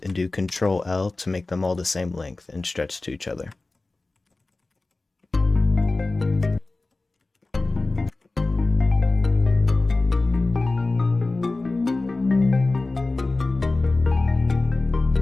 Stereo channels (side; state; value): right; quieter; 3.2 dB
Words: and do Control L to make them all the same length and stretch to each other.